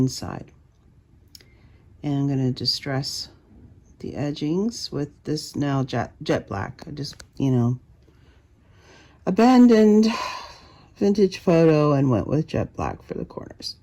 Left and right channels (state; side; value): identical; both; correlation 1.00